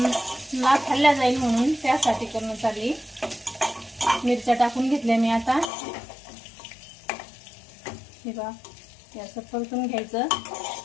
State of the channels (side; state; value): right; drops out; at 5.7 s